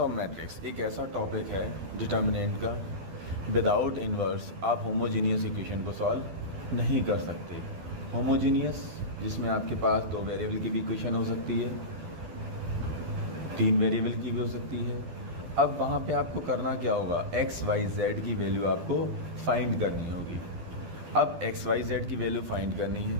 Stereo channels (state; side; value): late; left; 12 ms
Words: matrix एक ऐसा टॉपिक है डिटर्मिनेंट का। विदाउट इन्वर्स आप होमोजीनियस इक्वेशन को सॉल्व नहीं कर सकते। होमोजीनियस जिसमें आपके पास 2 वेरिएबल की भी इक्वेशन हो सकती है, 3 वेरिएबल की भी हो सकती है। अब वहाँ पे आपको करना क्या होगा, एक्स वाई जेड की वैल्यू आपको फाइंड करनी होगी। अब एक्स वाई जेड की वैल्यू फाइंड करनी